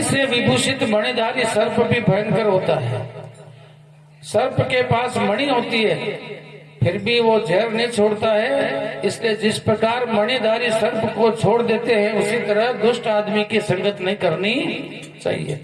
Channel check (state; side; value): identical; both; correlation 1.00